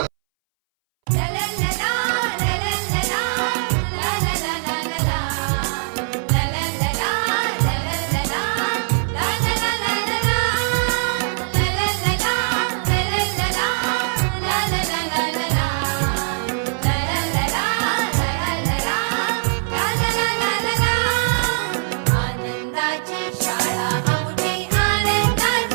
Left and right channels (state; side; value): silent; left; 62 dB below the other